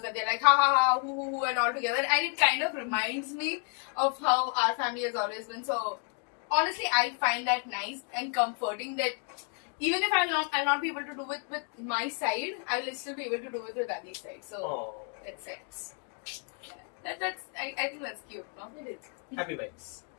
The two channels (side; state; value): right; quieter; 39.4 dB